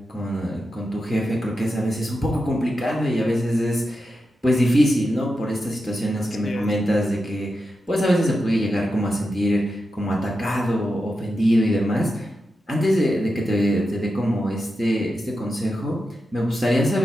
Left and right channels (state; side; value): normal; both; correlation 0.89